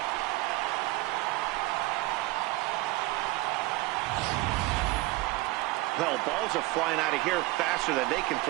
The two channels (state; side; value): quieter; left; 20.9 dB